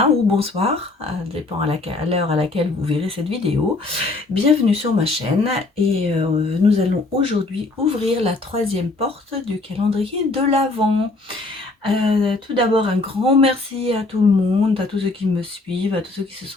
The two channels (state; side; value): quieter; right; 3.3 dB